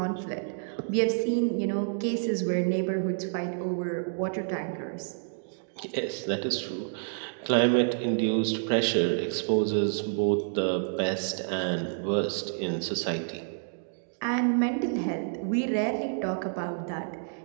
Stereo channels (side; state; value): left; silent; digital silence